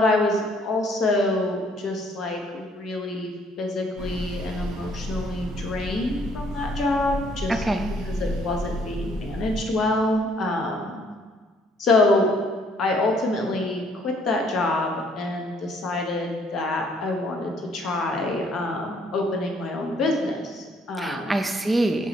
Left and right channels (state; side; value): normal; both; correlation 0.64